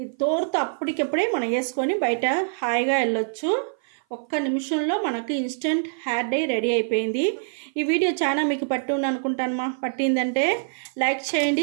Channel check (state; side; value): silent; left; 57 dB below the other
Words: తోరుతో అప్పటికప్పుడే మనం వేసుకొని బయట హాయిగా వెళ్ళొచ్చు. ఒక్క నిమిషంలో మనకు ఇన్స్టెంట్ హెయిర్ డై రెడీ అయిపోయింది. ఈ వీడియో చాలా మీకు పట్టింది అనుకుంటాను మా. పట్టిందంటే లైక్ చేయండి,